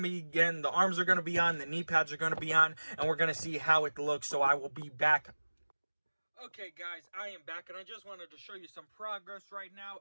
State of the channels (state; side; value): inverted; both; correlation -1.00